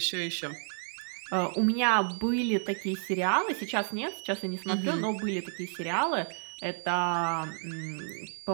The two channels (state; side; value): silent; left; digital silence